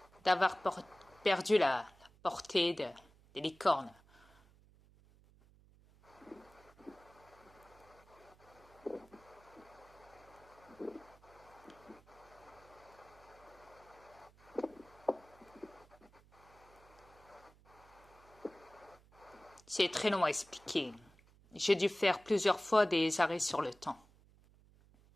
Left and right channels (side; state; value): right; noise; hum, 26 dB below the sound